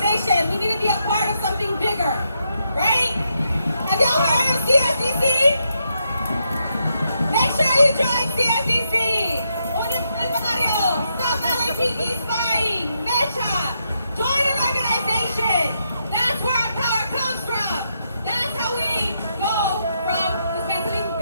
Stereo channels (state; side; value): inverted; both; correlation -0.80